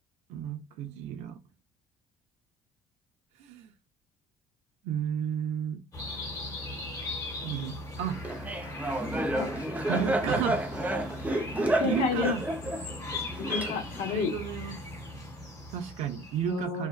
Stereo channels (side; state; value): both; normal; correlation 0.50